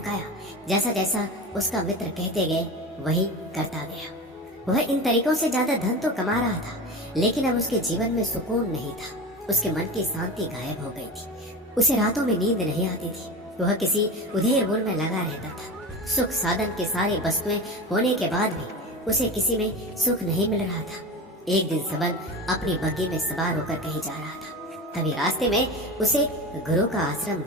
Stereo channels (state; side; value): normal; both; correlation 0.28